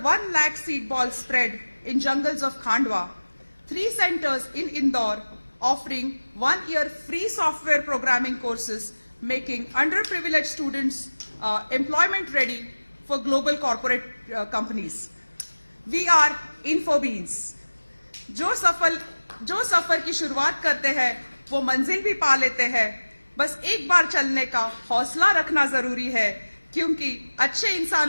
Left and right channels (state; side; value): inverted; both; correlation -1.00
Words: 1 lakh seed balls spread in jungles of Khandwa, 3 centers in Indore offering 1 year free software programming courses, making underprivileged students employment ready for global corporate companies. We are InfoBeans. जो सफर की शुरुआत करते हैं वो मंजिल भी पा लेते हैं। बस एक बार चलने का हौसला रखना जरूरी है, क्योंकि अच्छे